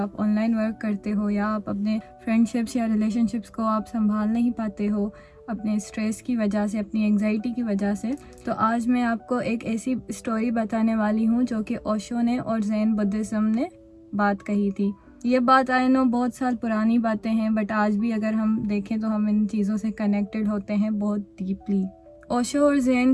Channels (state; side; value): identical; both; correlation 1.00